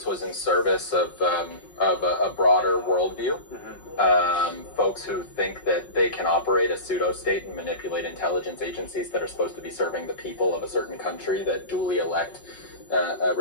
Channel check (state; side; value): late; right; 5.5 ms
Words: was in service of a broader worldview. Folks who think that they can operate a pseudo-state and manipulate intelligence agencies that are supposed to be serving the people of a certain country that duly elect